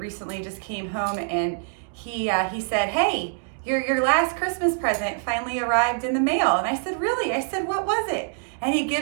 recently just came home and he said, "Hey, your last Christmas present finally arrived in the mail." And I said, "Really?" I said, "What was it?" And he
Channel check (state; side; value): silent; left; digital silence